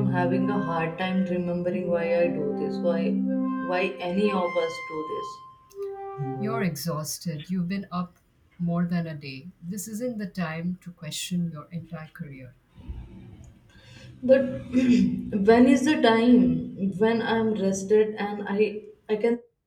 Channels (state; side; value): identical; both; correlation 1.00